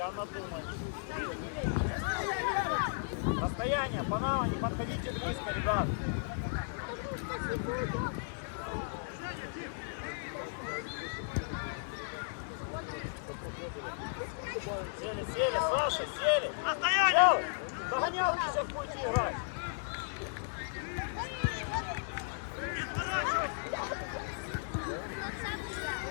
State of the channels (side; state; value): right; silent; digital silence